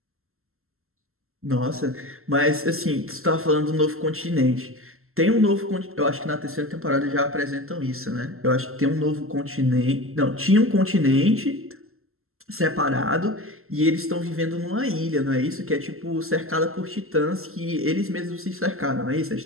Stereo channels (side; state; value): left; late; 0.62 ms